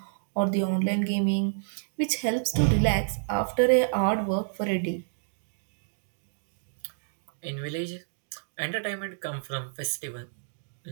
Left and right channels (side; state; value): left; silent; digital silence